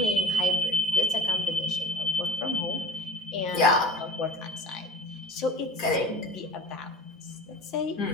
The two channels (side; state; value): both; normal; correlation 0.39